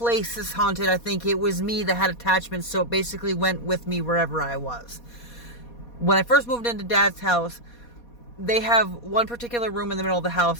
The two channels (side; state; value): right; late; 4.2 ms